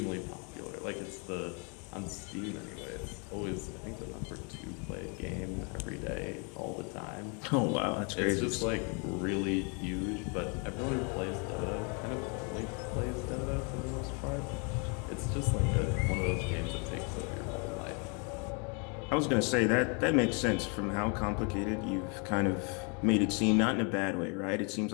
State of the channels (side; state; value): right; quieter; 35.2 dB